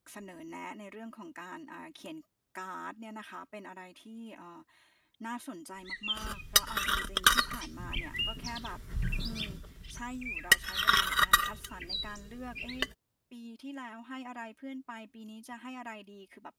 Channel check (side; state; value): both; identical; correlation 1.00